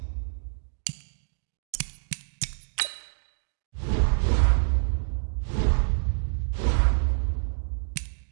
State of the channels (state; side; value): silent; left; digital silence